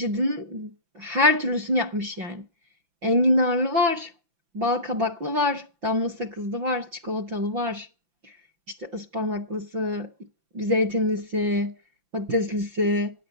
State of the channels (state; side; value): late; left; 5.9 ms